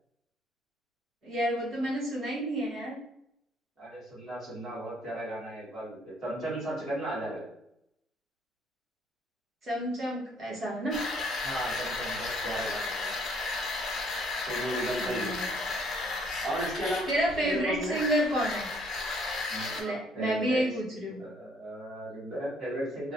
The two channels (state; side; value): normal; both; correlation 0.64